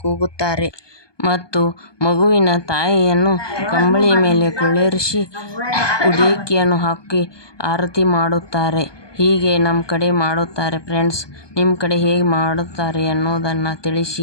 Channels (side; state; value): right; late; 1.2 ms